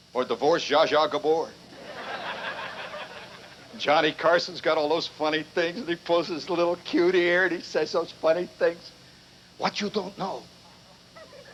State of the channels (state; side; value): identical; both; correlation 1.00